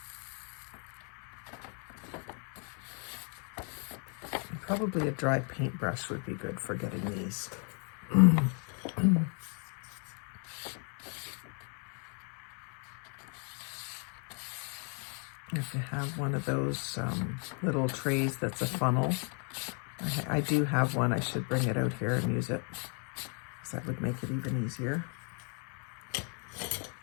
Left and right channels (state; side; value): quieter; right; 39.8 dB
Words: Probably a dry paintbrush would be good for getting these. If you have one of those little trays that's a funnel, I do have one. I should bring it out here and use it, because that would make it even easier.